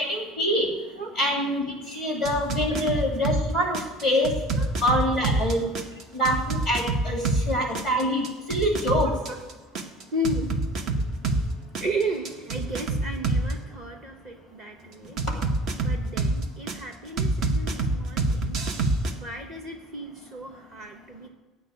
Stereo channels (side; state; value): both; normal; correlation 0.42